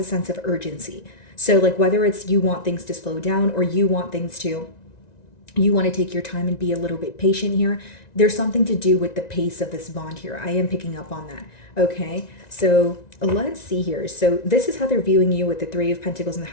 sense of urgency. So whether it's you want things to slow down, or you want to take your time and be a little bit patient here. There's something to do with the pace of this bond here. I am picking up on that. Okay, so let's see here. So this is how they're viewing you with the Three of Pentacles and the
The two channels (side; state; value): right; late; 1.9 ms